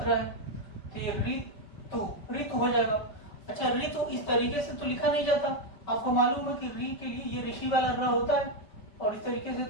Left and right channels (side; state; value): right; late; 5.2 ms